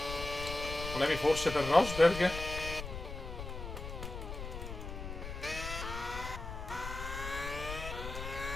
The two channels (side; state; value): left; noise; rumble, 8 dB below the sound